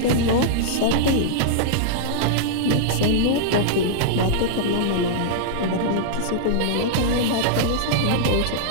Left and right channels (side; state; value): both; different; correlation -0.02